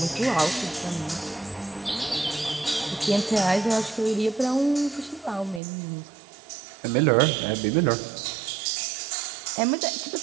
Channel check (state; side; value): drops out; left; at 5.6 s